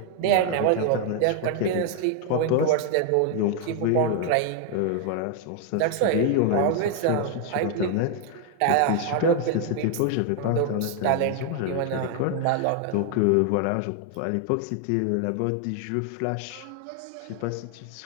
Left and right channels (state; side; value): different; both; correlation 0.00